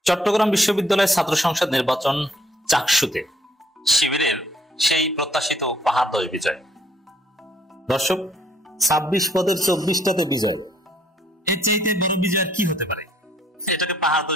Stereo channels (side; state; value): both; normal; correlation 0.65